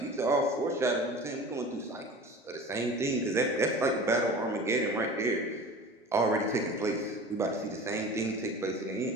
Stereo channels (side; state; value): both; normal; correlation 0.38